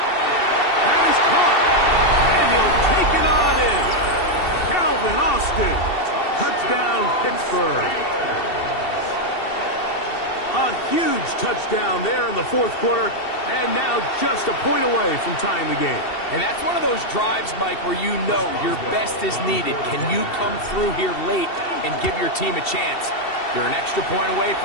That is caught. And he'll take it on in. Calvin Austin. Touchdown, Pittsburgh. A huge touchdown there in the 4th quarter, and now just a point away from tying the game. And that's one of those drives, Mike, where you know your best is needed. Can you come through here late and give your team a chance? You're an extra point away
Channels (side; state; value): right; late; 2.7 ms